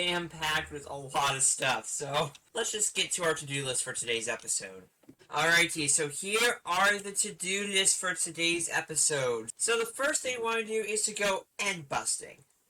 with a lot of stuff, so let's just get to our to-do list for today's episode. Alrighty, so here are the to-do list for today's episode. So the first thing I want to do is to go end busting.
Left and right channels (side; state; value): both; identical; correlation 1.00